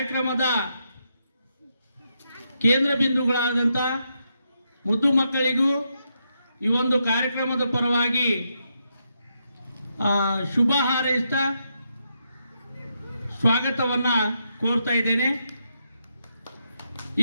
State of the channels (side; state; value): both; inverted; correlation -0.82